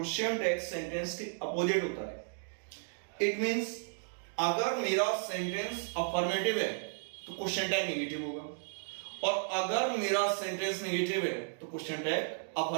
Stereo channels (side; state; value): left; silent; digital silence